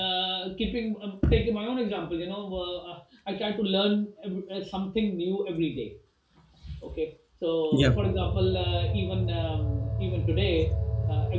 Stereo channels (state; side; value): identical; both; correlation 1.00